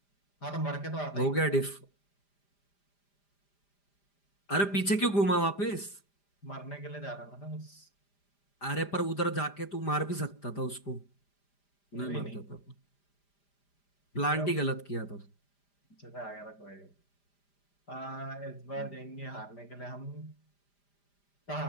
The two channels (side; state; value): right; late; 5.0 ms